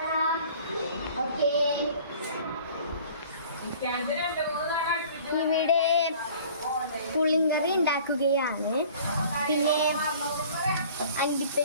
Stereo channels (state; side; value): inverted; both; correlation -0.49